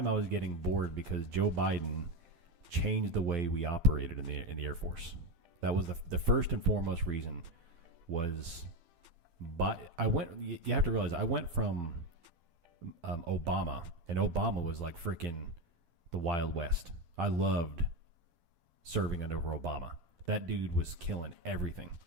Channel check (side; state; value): left; late; 12 ms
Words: I was getting bored because Joe Biden changed the way we operated in the Air Force. That was the first and foremost reason. Was you have to realize I went from Obama, and Obama was like freaking the Wild West. I loved serving under Obama. That dude was killing everything.